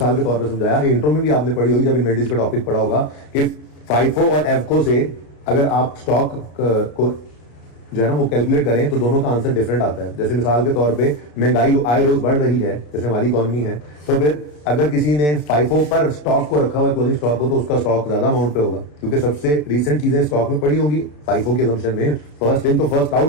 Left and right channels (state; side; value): late; right; 34 ms